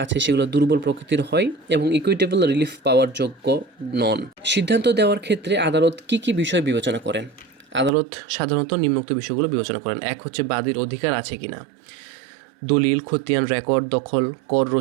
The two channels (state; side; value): drops out; left; at 7.9 s